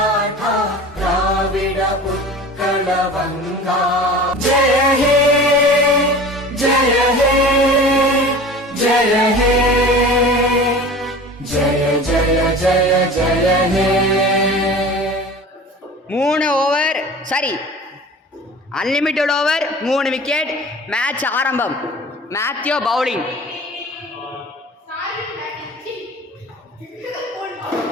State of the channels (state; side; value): normal; both; correlation 0.39